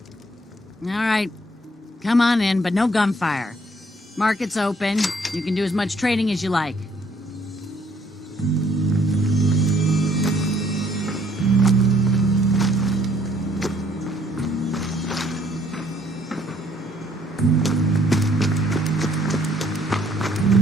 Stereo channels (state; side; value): normal; both; correlation 0.64